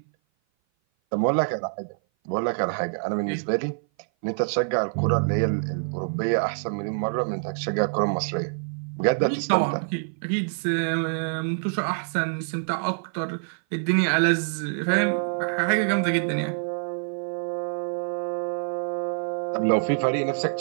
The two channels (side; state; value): left; silent; 57 dB below the other